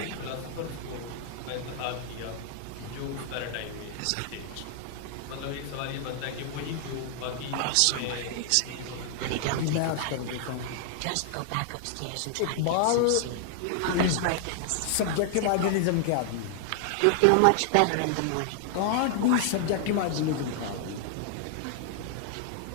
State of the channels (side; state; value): both; different; correlation 0.00